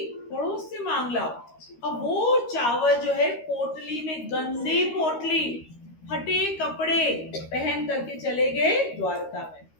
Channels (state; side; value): late; right; 13 ms